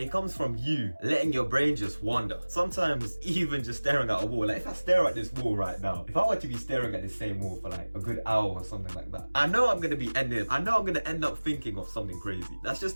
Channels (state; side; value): inverted; both; correlation -1.00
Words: comes from you letting your brain just wander. Sometimes even just staring at a wall. Like if I stare at this wall right now, if I were to be staring at the same wall for like a good hour or something like that, I know I'm gonna end up thinking of something crazy. That's just